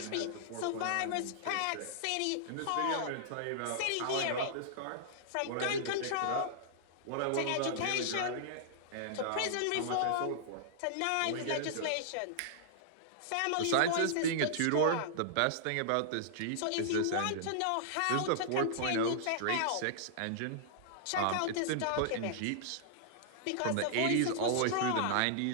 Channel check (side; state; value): both; different; correlation -0.01